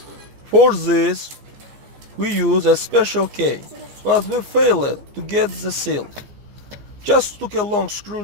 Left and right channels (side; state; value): left; late; 15 ms